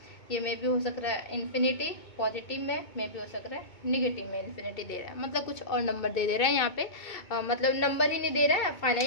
ये में भी हो सक रहा है इन्फिनिटी पॉजिटिव में भी हो सक रहा है नेगेटिव में इन्फिनिटी दे रहा है, मतलब कुछ और नंबर दे रहा है यहाँ पे। मतलब नंबर ही नहीं दे रहा है,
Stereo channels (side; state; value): right; late; 2.2 ms